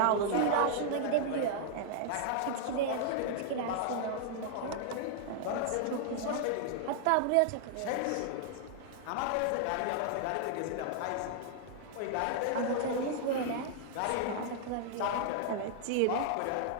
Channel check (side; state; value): both; different; correlation -0.01